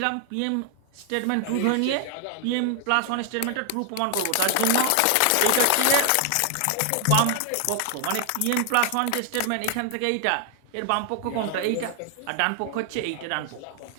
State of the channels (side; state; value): both; different; correlation 0.00